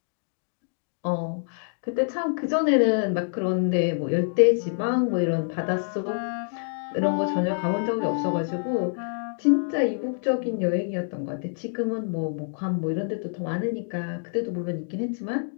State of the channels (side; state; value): right; silent; digital silence